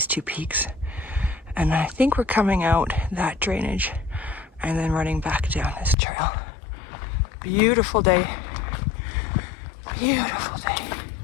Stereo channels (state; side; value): drops out; right; at 6.0 s